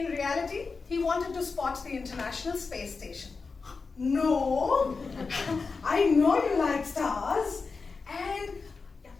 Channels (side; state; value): right; quieter; 4.5 dB